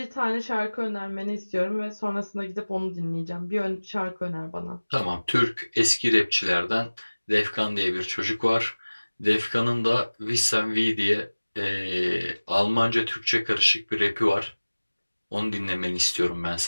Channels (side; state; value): both; inverted; correlation -1.00